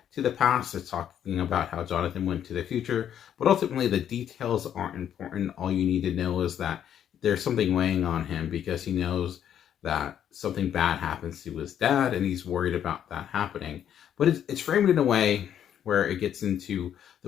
to the past. It's talking about how Jonathan went to the future, but ultimately the details aren't important. All you need to know is that there's something weighing on him because he knows that something bad happens to his dad and he's worried about that happening. But it's framed in a way where it gets into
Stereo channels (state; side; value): quieter; right; 9.7 dB